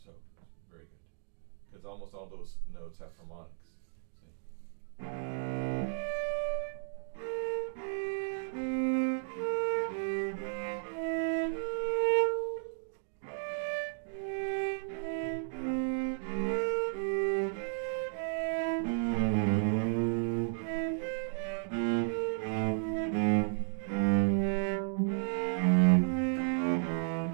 very good, because almost all those notes have harmonics. See?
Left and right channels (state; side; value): silent; left; digital silence